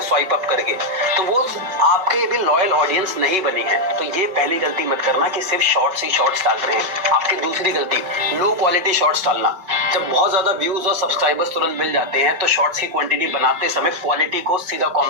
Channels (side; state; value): left; late; 5.2 ms